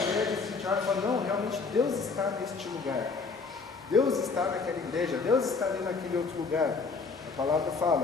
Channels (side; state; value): right; quieter; 4.5 dB